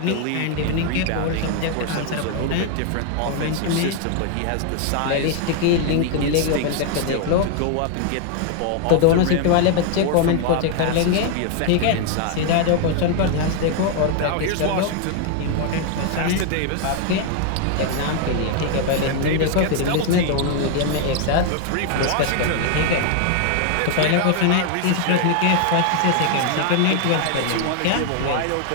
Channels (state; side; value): different; both; correlation 0.00